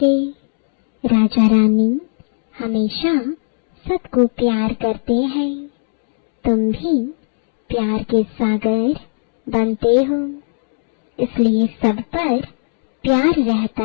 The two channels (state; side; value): silent; right; 68 dB below the other